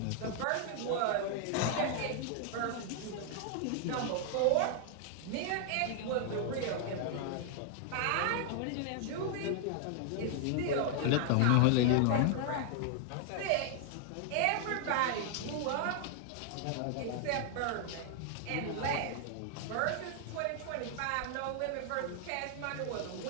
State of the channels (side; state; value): both; different; correlation 0.00